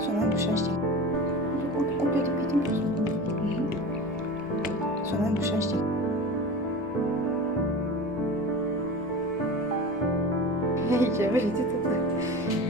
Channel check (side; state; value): right; noise; rumble, 22 dB below the sound